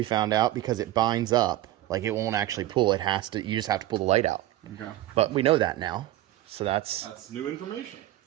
found out, because it binds up. Like, it won't actually pull. It has to. You just have to pull the light out. Okay. But we know that now. So that's new information.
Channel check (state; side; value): quieter; left; 15.0 dB